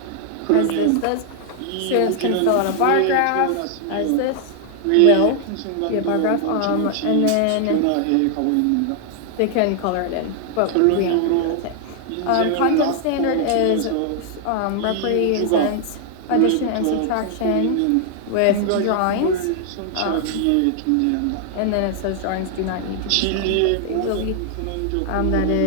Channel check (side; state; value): both; different; correlation 0.00